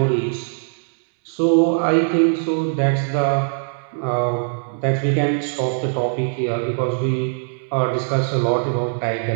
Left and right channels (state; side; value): silent; left; digital silence